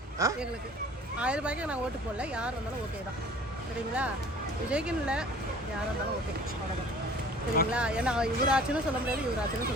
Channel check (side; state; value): both; normal; correlation 0.48